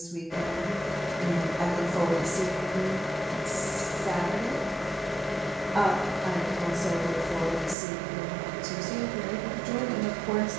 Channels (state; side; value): drops out; left; at 7.8 s